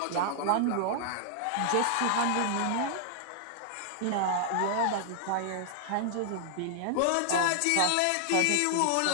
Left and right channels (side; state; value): both; different; correlation -0.01